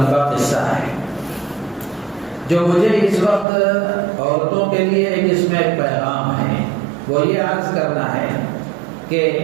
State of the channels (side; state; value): left; drops out; at 3.5 s